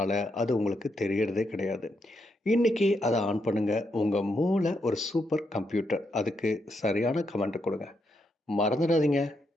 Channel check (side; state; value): both; normal; correlation 0.80